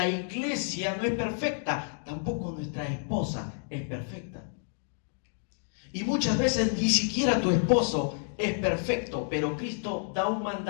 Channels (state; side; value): silent; right; digital silence